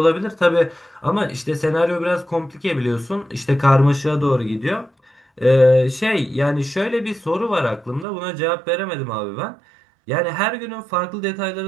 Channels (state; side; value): drops out; left; at 8.1 s